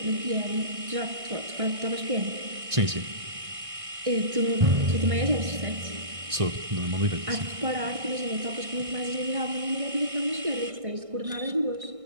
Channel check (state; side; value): late; left; 1.6 ms